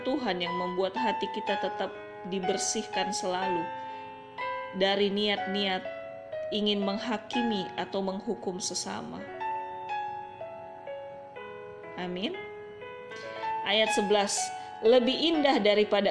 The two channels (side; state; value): both; identical; correlation 1.00